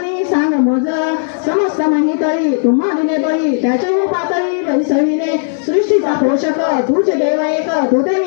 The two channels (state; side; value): silent; right; digital silence